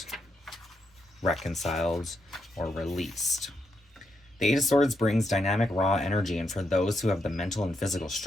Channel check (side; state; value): both; normal; correlation 0.81